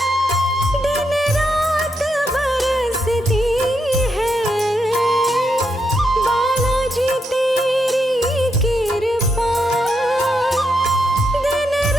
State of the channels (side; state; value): both; normal; correlation 0.81